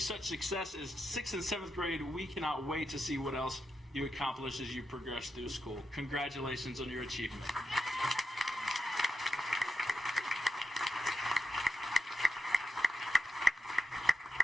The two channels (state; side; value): normal; both; correlation 0.87